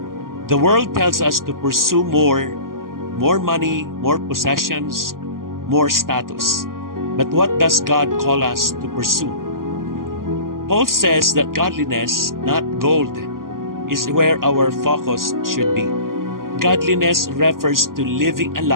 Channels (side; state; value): left; late; 0.91 ms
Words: The world tells us to pursue more money, more possessions, more status. But what does God call us to pursue? Paul says that godliness, not gold, is where our focus should be. Godliness refers to living a